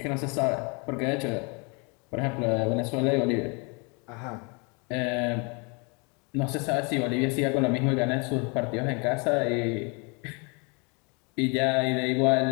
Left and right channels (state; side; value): quieter; right; 32.7 dB